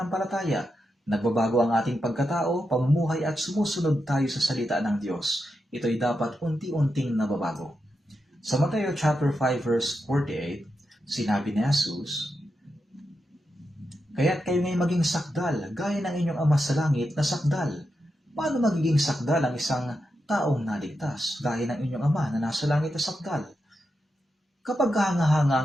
Nagbabago ang ating pagkatao, pamumuhay at sumusunod tayo sa salita ng Diyos. Ito ay dapat unti-unting nababago. Sa Mateo chapter 5 verse 48, sinabi ni Jesus, "Kaya't kayo ngay maging sakdal, gaya ng inyong Ama sa langit na sakdal." Paano magiging sakdal ang isang taong naligtas, gaya ng inyong Ama na nasa langit na sakdal? Kapag hanga-hanga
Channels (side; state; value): both; normal; correlation 0.87